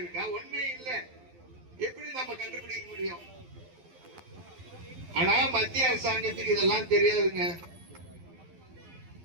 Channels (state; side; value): late; left; 12 ms